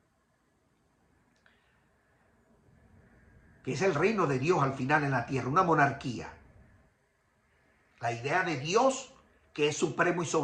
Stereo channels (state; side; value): identical; both; correlation 1.00